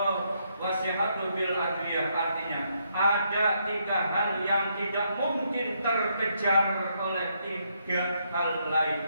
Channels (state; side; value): inverted; both; correlation -0.76